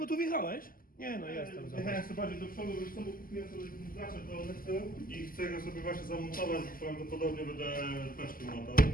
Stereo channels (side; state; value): right; late; 0.42 ms